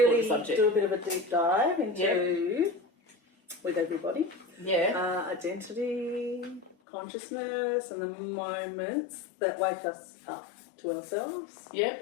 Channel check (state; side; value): drops out; right; at 6.8 s